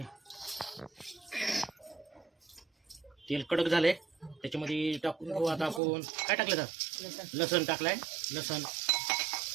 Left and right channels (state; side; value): drops out; left; at 5.8 s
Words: तेल कडक झाले. त्याच्यामध्ये टाकून घेऊ आता आपण. काय टाकलं तर? लसण टाकलाय. लसण